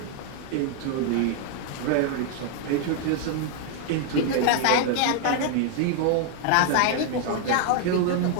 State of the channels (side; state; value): both; different; correlation 0.00